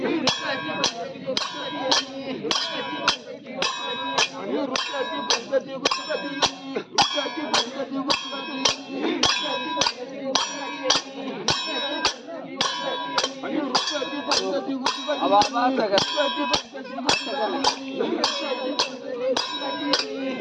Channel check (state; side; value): identical; both; correlation 1.00